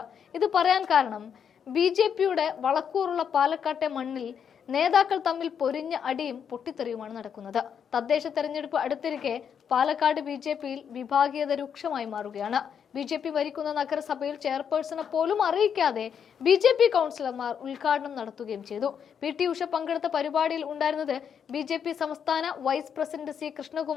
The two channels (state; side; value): quieter; right; 7.7 dB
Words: ഇത് പറയാൻ കാരണം BJP-യുടെ വളക്കൂറുള്ള പാലക്കാട്ടെ മണ്ണിൽ നേതാക്കൾ തമ്മിൽ പൊരിഞ്ഞ അടിയും പൊട്ടിത്തെറിയുമാണ് നടക്കുന്നത്. തദ്ദേശ തെരഞ്ഞെടുപ്പ് അടുത്തിരിക്കെ പാലക്കാട് BJP-യിൽ വിഭാഗീയത രൂക്ഷമായി മാറുകയാണ്. BJP ഭരിക്കുന്ന നഗരസഭയിൽ ചെയർപേഴ്സണെ പോലും അറിയിക്കാതെ BJP കൗൺസിലർമാർ ഉദ്ഘാടനം നടത്തുകയും ചെയ്തു. PT ഉഷ പങ്കെടുത്ത പരിപാടിയിൽ ഉണ്ടായിരുന്നത് BJP സംസ്ഥാന വൈസ് പ്രസിഡന്റ് C